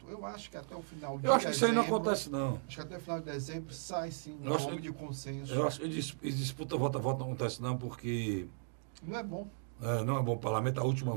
Eu acho que até o final de dezembro... Eu acho que isso aí não acontece, não. Acho que até o final de dezembro sai, sim, um nome de consenso. Eu acho que disputa voto a voto não acontece, não, porque... Não é bom. Não é bom para o parlamento. A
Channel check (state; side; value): silent; left; digital silence